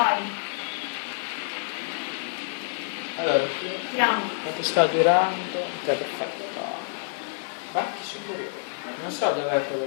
Allora, Andiamo! quanto sta durando? Ok, perfetto. Parti superiore. Non so dov'è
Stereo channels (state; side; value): silent; right; digital silence